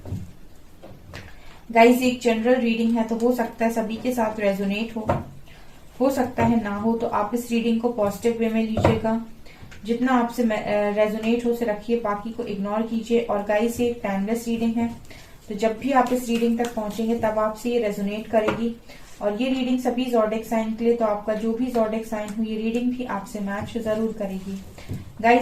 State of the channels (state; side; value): identical; both; correlation 1.00